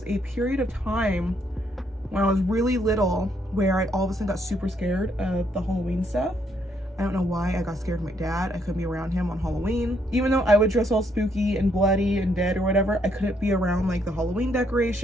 a period of time when I was really little where I all of a sudden got super scared of the Halloween stuff. I don't know why. I got scared of my dad. I couldn't be around him on Halloween. Even though I would dress all spooky and bloody and dead or whatever, I couldn't be around like the Halloween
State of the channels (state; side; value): normal; both; correlation 0.72